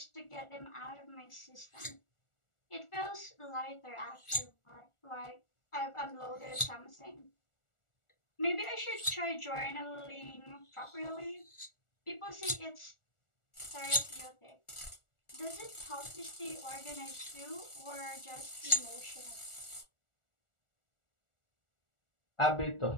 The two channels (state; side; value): late; right; 1.4 ms